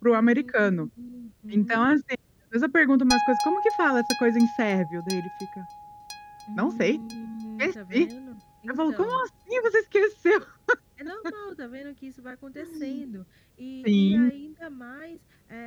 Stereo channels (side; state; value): both; identical; correlation 1.00